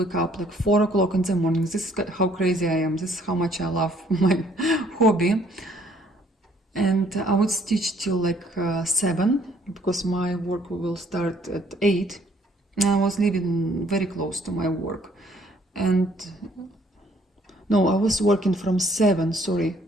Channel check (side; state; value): both; normal; correlation 0.63